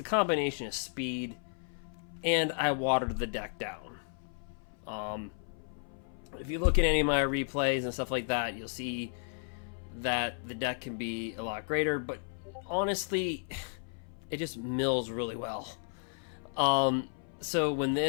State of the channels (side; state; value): right; silent; 55 dB below the other